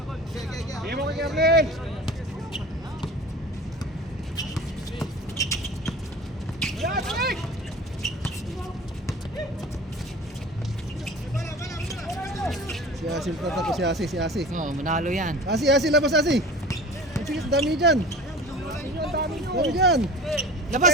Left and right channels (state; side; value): normal; both; correlation 0.39